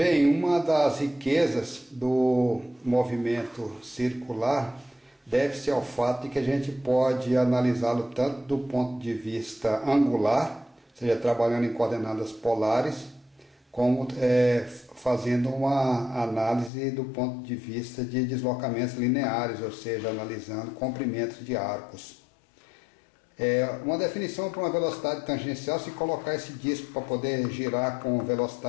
uma das riquezas do movimento circular deve-se ao fato de que a gente pode analisá-lo tanto do ponto de vista angular, ou seja, trabalhando em coordenadas polares, como fazendo uma análise do ponto de vista de deslocamentos lineares, ou seja, analisando comprimentos de arcos. Uma definição para uma velocidade tangencial: se colocar esse disco para poder girar com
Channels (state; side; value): drops out; right; at 16.7 s